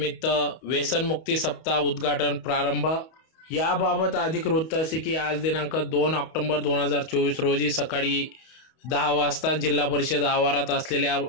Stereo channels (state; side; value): late; right; 31 ms